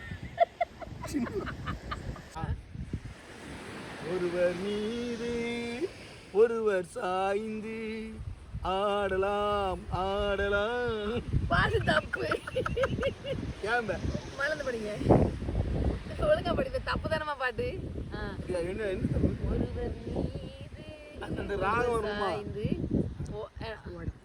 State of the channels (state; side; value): identical; both; correlation 1.00